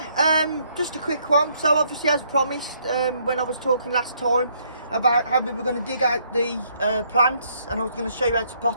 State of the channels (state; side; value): inverted; both; correlation -0.70